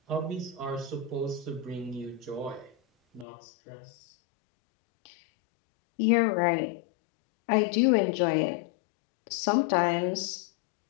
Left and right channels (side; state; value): right; drops out; at 3.2 s